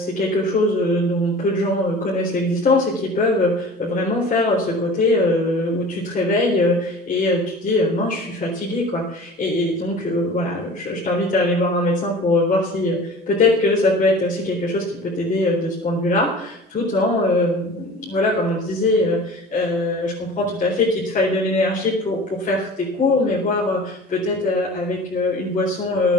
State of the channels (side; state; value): both; normal; correlation 0.41